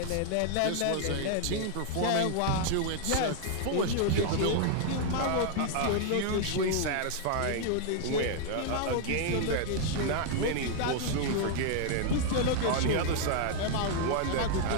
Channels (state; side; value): different; both; correlation 0.00